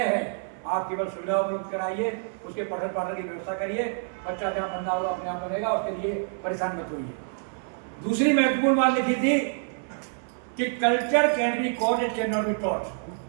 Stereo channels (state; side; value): silent; left; 60 dB below the other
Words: है। आप केवल सुविधा उपलब्ध कराइए, उसके पठन पाठन की व्यवस्था करिए, बच्चा जहाँ बनना होगा अपने आप बनेगा, उसके लिए परेशान मत होइए। दूसरी महत्वपूर्ण बात लिखी थी कि culture can be caught, it can not be taught.